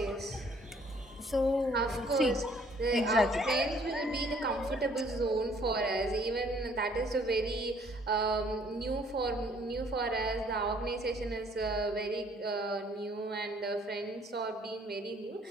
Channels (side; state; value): both; normal; correlation 0.61